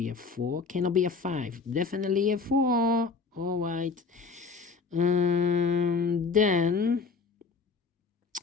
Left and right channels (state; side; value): quieter; right; 4.6 dB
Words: a 4, cannot be a 5, definitely a 4. All right. Then